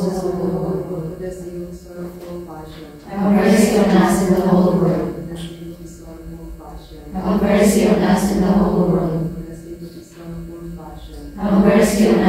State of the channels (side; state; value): both; identical; correlation 1.00